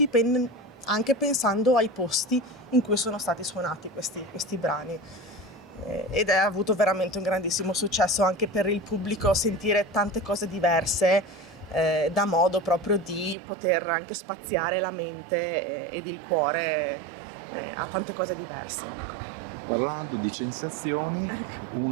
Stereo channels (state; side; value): drops out; left; at 13.4 s